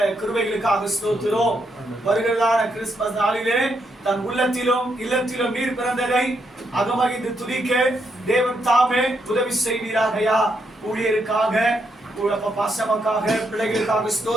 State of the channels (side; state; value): both; normal; correlation 0.79